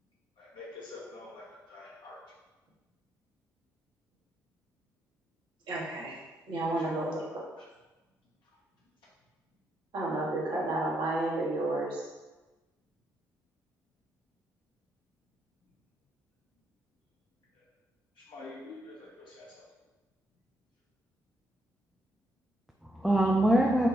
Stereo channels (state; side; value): normal; both; correlation 0.78